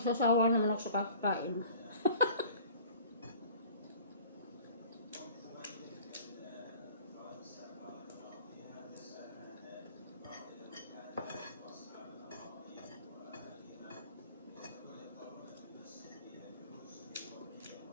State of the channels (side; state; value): both; inverted; correlation -0.47